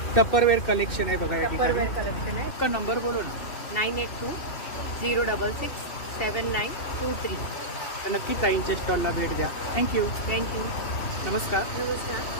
टप्परवेअर कलेक्शन आहे बघा या ठिकाणी. कलेक्शन है. आपका नंबर बोलो ना. 9820667923. तर नक्की ताईंच्या स्टॉलला भेट द्या. थँक्यू. नमस्कार. नमस्कार.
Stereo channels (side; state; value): right; late; 2.7 ms